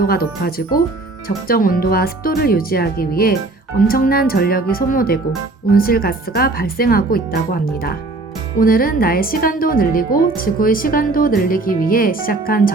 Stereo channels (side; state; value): left; quieter; 3.2 dB